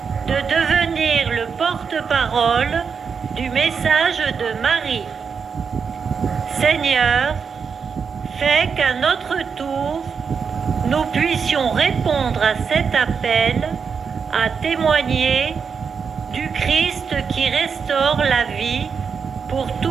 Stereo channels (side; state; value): left; quieter; 6.1 dB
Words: de devenir le porte-parole du message de Marie. Seigneur, fais qu'à notre tour, nous puissions répondre à cet appel à témoigner du Christ qui restaure la vie pour